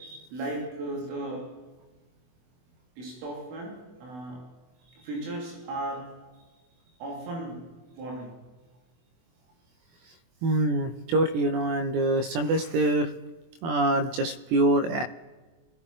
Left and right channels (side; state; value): left; late; 24 ms